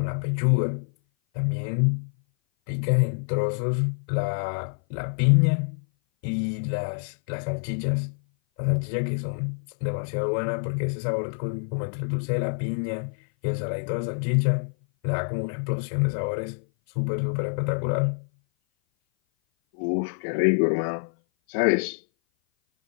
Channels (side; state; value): right; silent; 56 dB below the other